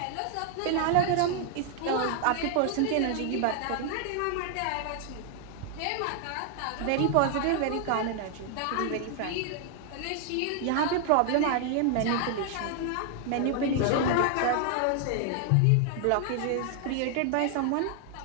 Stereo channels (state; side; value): different; both; correlation 0.00